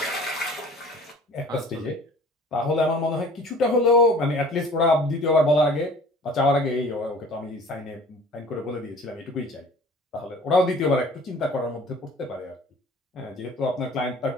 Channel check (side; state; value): both; normal; correlation 0.47